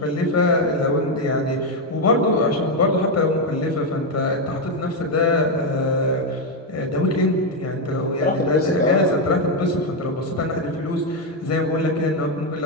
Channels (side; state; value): both; normal; correlation 0.04